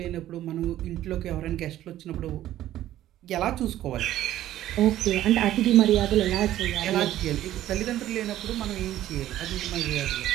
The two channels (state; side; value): quieter; left; 13.3 dB